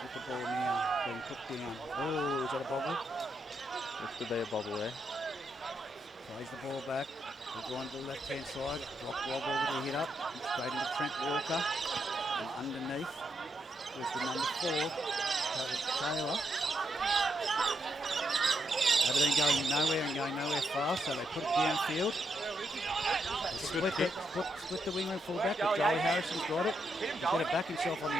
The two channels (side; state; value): both; normal; correlation 0.80